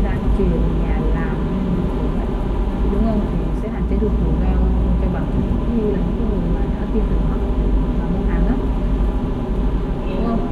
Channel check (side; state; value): both; identical; correlation 1.00